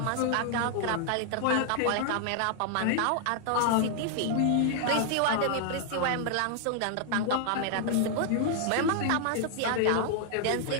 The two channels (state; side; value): different; both; correlation 0.00